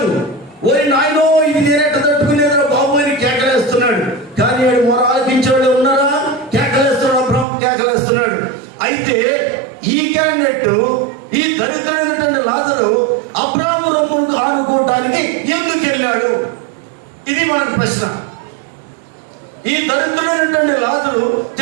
ఓరి నాయనో ఇది నేనెట్ట తట్టుకునేదా బాబు అని కేకలేస్తున్నాడు. కానీ వాడు మొర ఆలకించేవాడు ఉన్నారా? కేకలేస్తున్నాడు, అబ్రాహాం కేకలేస్తున్నాడు. అయితే ఈ క్యాండిడేట్, ఈ దరిద్రుడైనటువంటి లాజరు అబ్రాహాము రొమ్మును ఆడుకోవడానికి ఎందుకు వెళ్ళాడు? ఇది మనకు ప్రశ్న. ఈ దరిద్రుడైనటువంటి లాజరు,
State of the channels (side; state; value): left; drops out; at 7.5 s